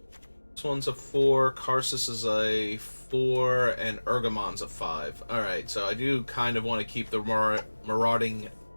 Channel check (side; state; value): both; inverted; correlation -1.00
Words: This one's a 4, Karsus is a 4, and Urgamon's a 5. Alright, so I do kind of want to keep the Marauding